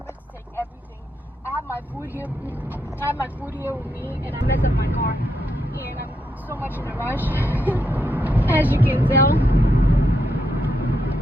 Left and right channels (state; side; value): normal; both; correlation 0.80